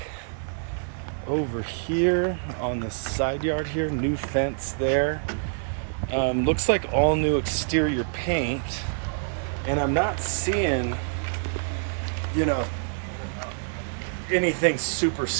over here on the side yard here. New fence there. Looks like all new exterior paint, and I'm not seeing, anything super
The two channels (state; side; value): silent; left; 56 dB below the other